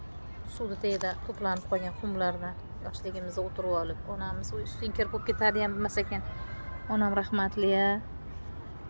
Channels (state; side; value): inverted; both; correlation -1.00